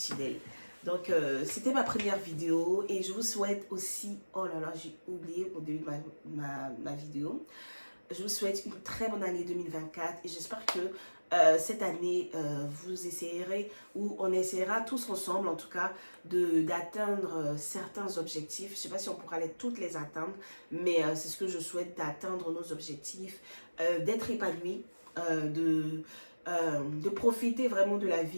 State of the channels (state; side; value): inverted; both; correlation -1.00